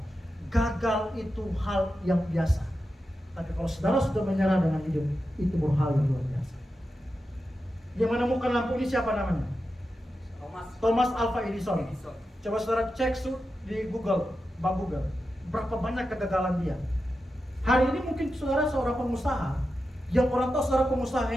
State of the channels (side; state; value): both; normal; correlation 0.90